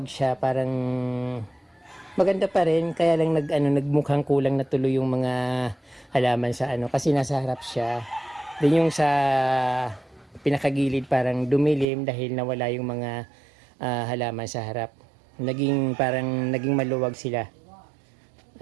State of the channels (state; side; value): drops out; left; at 11.9 s